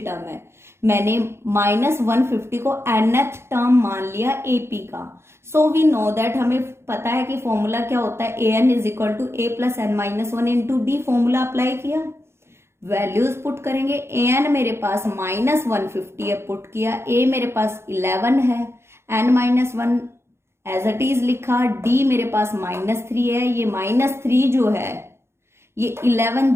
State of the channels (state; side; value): late; left; 0.12 ms